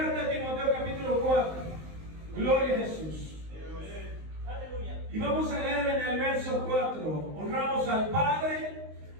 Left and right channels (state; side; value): late; left; 19 ms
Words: de Timoteo capítulo 4. Gloria a Jesús. Y vamos a leer en el verso 4. Honramos al Padre,